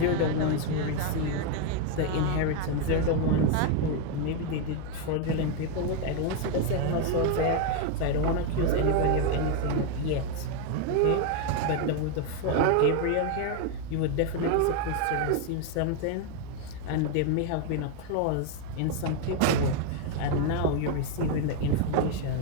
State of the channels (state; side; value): different; both; correlation 0.01